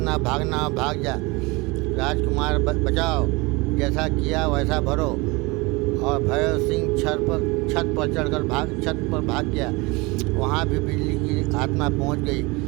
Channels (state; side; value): quieter; left; 25.1 dB